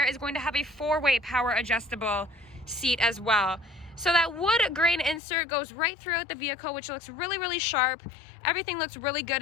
is going to have a 4-way power adjustable seat as well. So that wood grain insert goes right throughout the vehicle, which looks really sharp. Everything looks really good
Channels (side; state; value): right; drops out; at 5.2 s